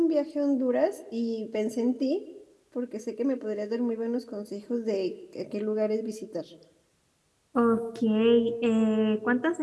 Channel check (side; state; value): both; identical; correlation 1.00